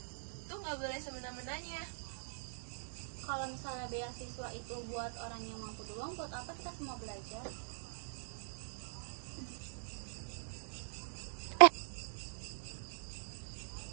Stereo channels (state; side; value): silent; left; digital silence